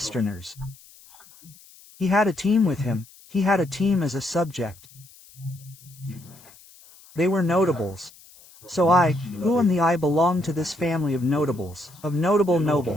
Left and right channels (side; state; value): left; noise; hiss, 24 dB below the sound